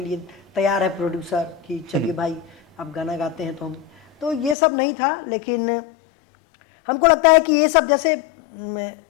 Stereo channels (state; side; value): drops out; right; at 4.5 s